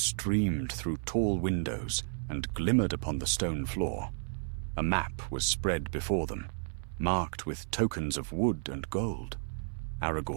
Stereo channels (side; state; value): left; silent; 56 dB below the other